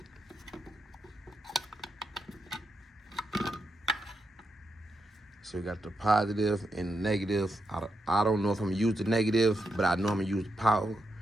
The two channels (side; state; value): both; normal; correlation 0.83